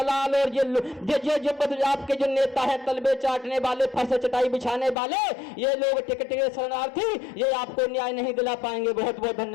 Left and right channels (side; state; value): right; drops out; at 5.0 s